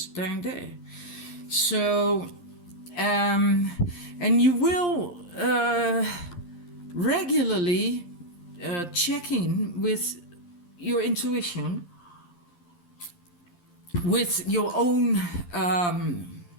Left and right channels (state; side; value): late; right; 11 ms